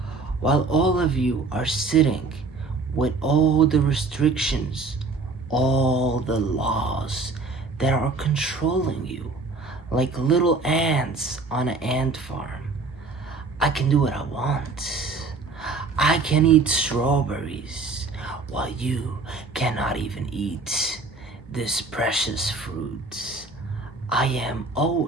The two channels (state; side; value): quieter; left; 3.9 dB